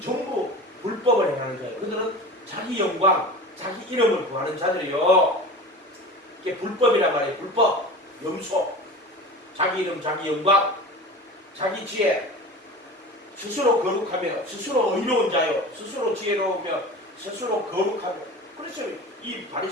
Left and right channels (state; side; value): normal; both; correlation 0.35